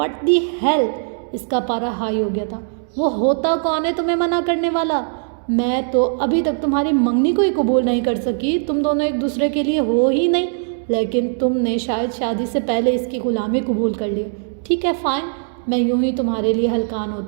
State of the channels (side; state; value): left; silent; digital silence